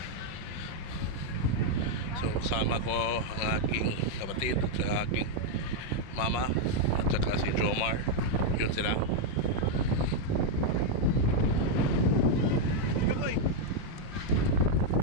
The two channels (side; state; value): right; late; 5.5 ms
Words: So kasama ko ang aking kapatid at saka aking mama at saka si Jomar. Yun sila.